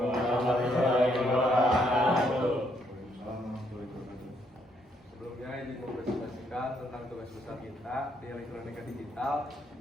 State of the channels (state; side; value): normal; both; correlation 0.72